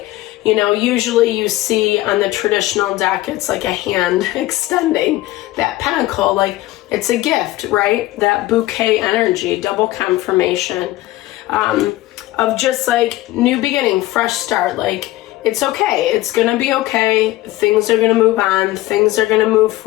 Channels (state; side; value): quieter; right; 17.0 dB